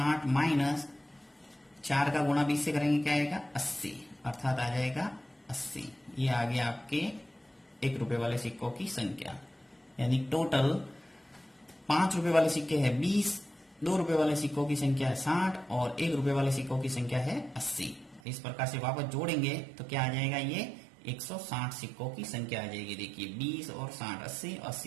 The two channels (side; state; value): left; drops out; at 18.2 s